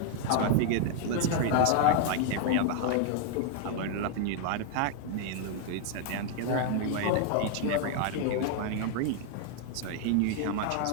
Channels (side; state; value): both; different; correlation 0.00